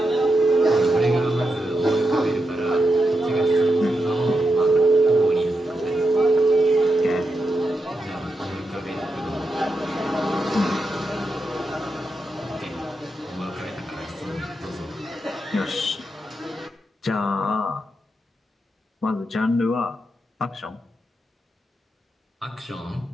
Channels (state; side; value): normal; both; correlation 0.86